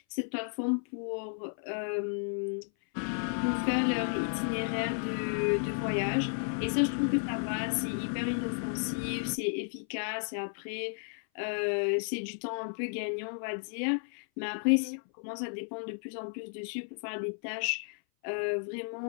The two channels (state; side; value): silent; right; 56 dB below the other